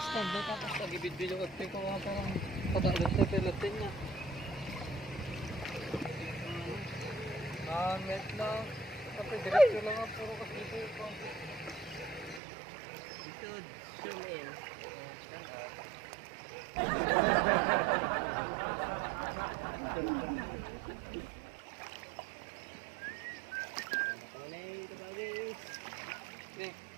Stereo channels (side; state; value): left; drops out; at 12.4 s